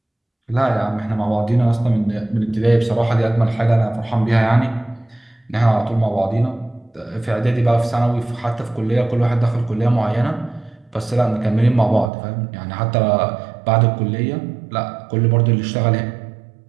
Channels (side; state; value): left; drops out; at 12.1 s